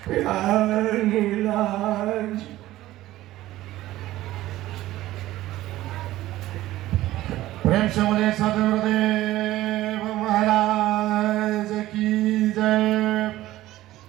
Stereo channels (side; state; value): left; quieter; 15.7 dB